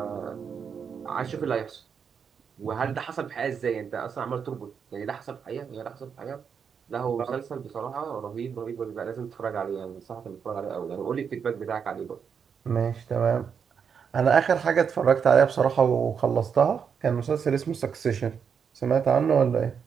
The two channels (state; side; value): quieter; left; 6.8 dB